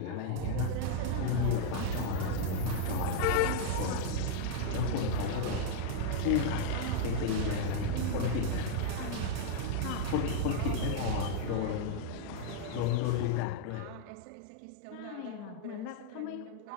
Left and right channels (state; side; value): different; both; correlation -0.01